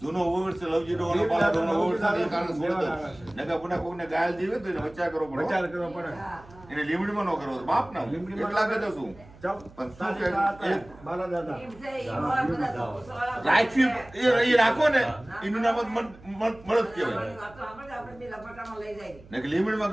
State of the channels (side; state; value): right; noise; hum, 22 dB below the sound